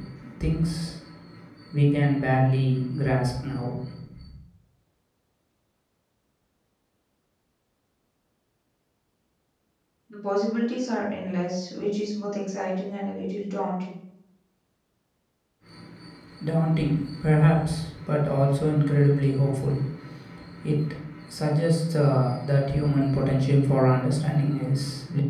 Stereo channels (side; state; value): both; identical; correlation 1.00